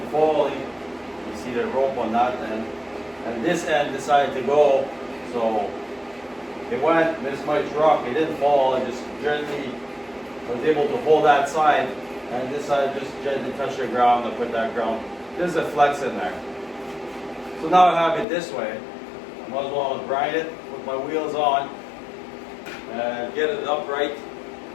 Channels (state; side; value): drops out; right; at 18.2 s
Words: falling. You see the rope on that end. And this end decided to go, so it went, missed my truck. It didn't fall, it just gently was able to hold that side. And this side just gently touched the ground and put that ground. There's a flex in there. So now I have it this way. I might as well grind it, put my wheels on, and get it upright,